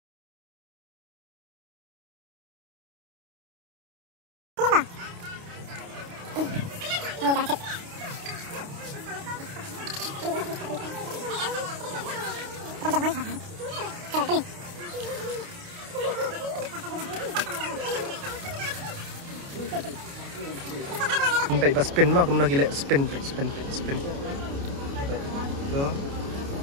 Baik pas spin mah, kemudian gila spin. Tu.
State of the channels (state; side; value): late; left; 29 ms